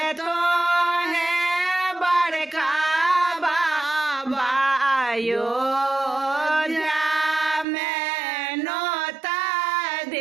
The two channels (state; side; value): drops out; left; at 7.7 s